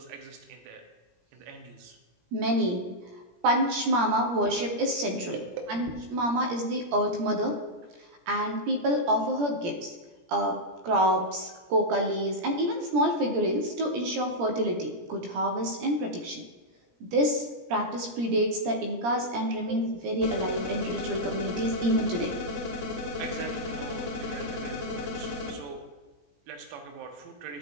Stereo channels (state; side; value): late; left; 17 ms